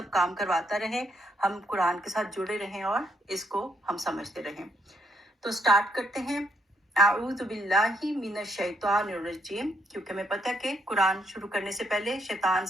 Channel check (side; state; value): both; normal; correlation 0.74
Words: کام کرواتا رہے، ہم قرآن کے ساتھ جڑے رہیں اور اس کو ہم سمجھتے رہیں۔ تو سٹارٹ کرتے ہیں، اعوذ باللہ من الشیطان الرجیم، کیونکہ ہمیں پتہ ہے کہ قرآن شروع کرنے سے پہلے شیطان